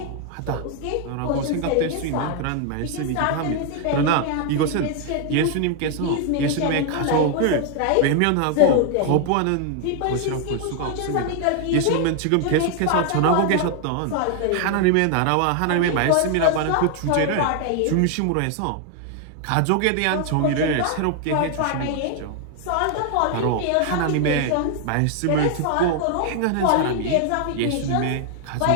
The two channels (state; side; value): different; both; correlation 0.00